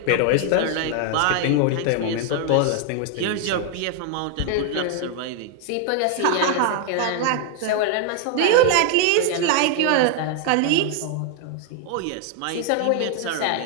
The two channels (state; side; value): different; both; correlation 0.00